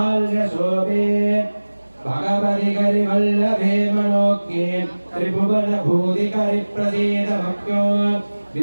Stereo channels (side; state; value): both; inverted; correlation -1.00